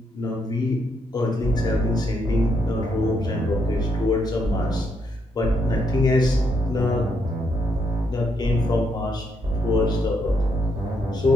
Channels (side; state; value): both; normal; correlation 0.76